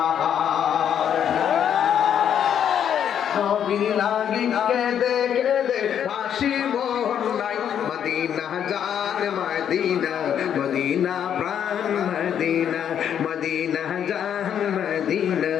নবী লাগি কেঁদে কেঁদে হাসি মোর নাই মদিনা জান মদিনা মদিনা প্রাণ মদিনা মদিনা জান মদিনা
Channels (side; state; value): right; quieter; 9.0 dB